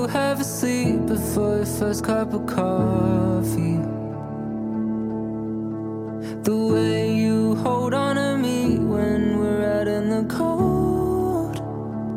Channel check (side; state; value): both; identical; correlation 1.00